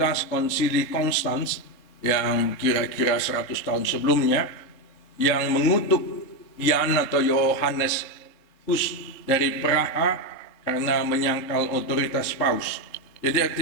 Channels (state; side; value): late; right; 3.8 ms